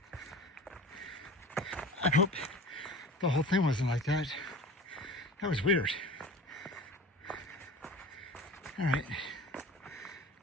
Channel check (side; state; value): both; normal; correlation 0.37